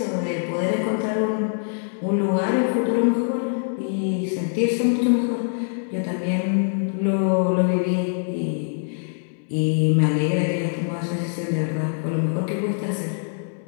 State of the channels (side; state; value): right; silent; 63 dB below the other